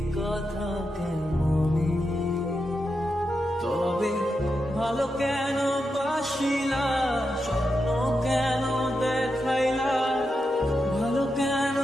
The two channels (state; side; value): normal; both; correlation 0.87